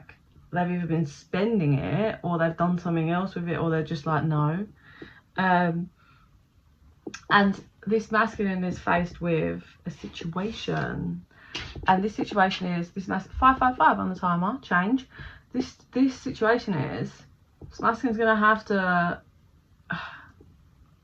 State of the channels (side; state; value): both; identical; correlation 1.00